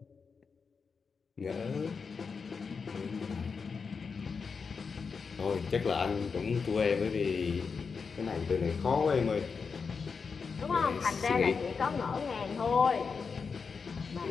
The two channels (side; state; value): right; quieter; 5.3 dB